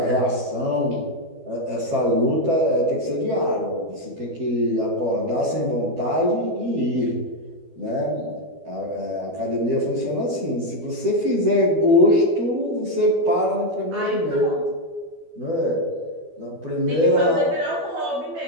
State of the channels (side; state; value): left; late; 12 ms